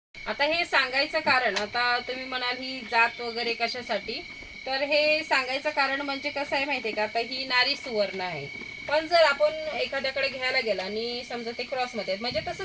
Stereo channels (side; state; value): both; identical; correlation 1.00